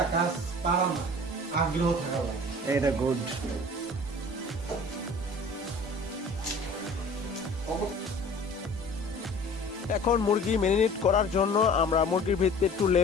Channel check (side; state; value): both; normal; correlation 0.45